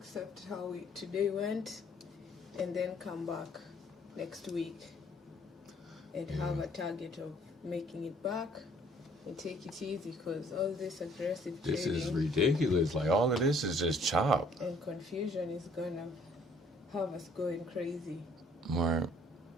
how today went and then come back next week and have a target of making it back and take it easy, because all this aggressive This trading is ridiculous. Like, all of this is just chop. and confusion is gonna have us going crazy. Right.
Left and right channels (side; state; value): both; normal; correlation 0.60